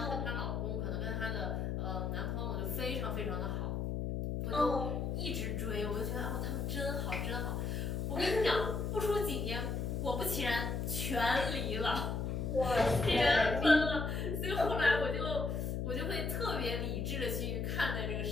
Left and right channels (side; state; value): left; noise; hum, 1 dB below the sound